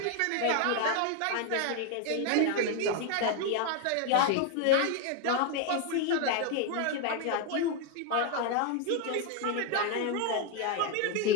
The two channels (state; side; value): different; both; correlation 0.01